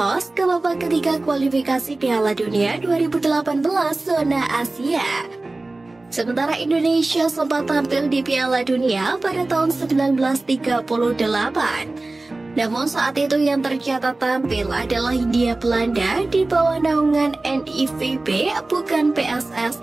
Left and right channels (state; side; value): quieter; left; 3.1 dB